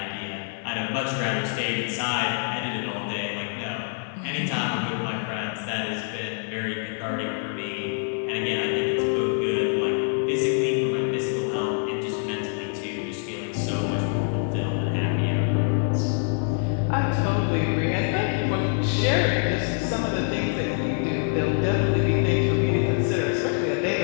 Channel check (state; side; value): silent; right; 57 dB below the other